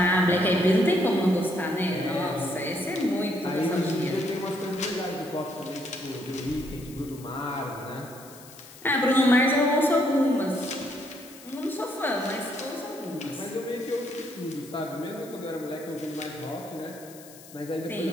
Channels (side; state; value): left; noise; hiss, 19 dB below the sound